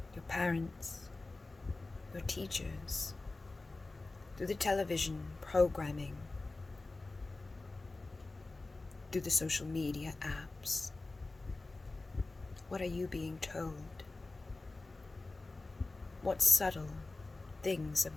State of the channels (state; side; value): quieter; right; 3.3 dB